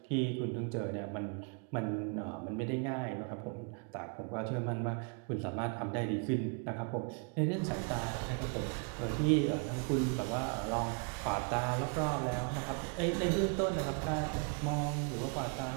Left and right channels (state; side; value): quieter; left; 37.2 dB